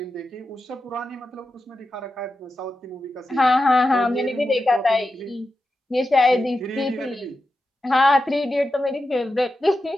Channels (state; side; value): normal; both; correlation 0.90